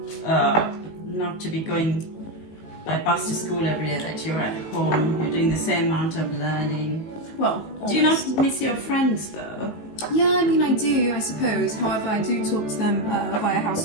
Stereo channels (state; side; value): late; right; 19 ms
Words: to be going by bus to school every day, that you're at home, you're doing the same amount of learning. Well, always. Do you not miss your friends though? Yeah, I mean, I do, I suppose. However, I do talk to them via house